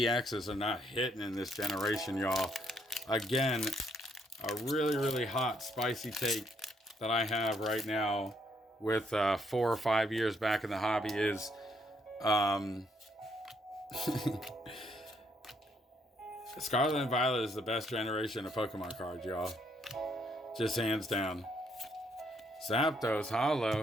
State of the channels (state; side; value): normal; both; correlation 0.71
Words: are not hitting in this generation, y'all. Again, a really, really hot, spicy take that I have right now with 4 or 5 years back in the hobby is Scarlet and Violet is the best generation of Pokemon cards, y'all. Just hands down. Zapdos,